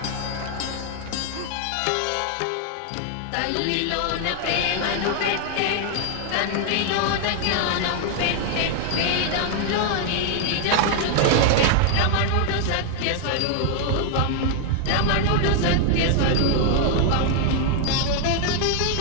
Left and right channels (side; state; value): both; different; correlation 0.00